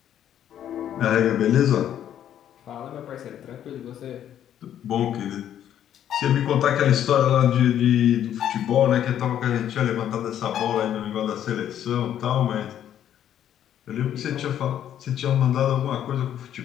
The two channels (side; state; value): right; quieter; 10.5 dB